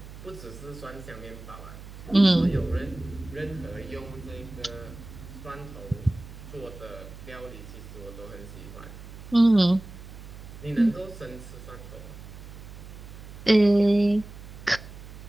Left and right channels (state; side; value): noise; right; hum, 14 dB below the sound